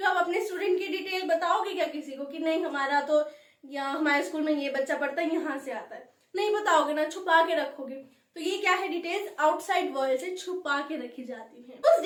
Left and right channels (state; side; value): identical; both; correlation 1.00